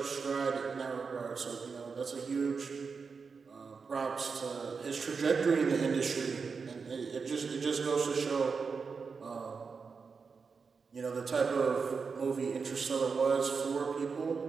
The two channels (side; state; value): left; quieter; 5.2 dB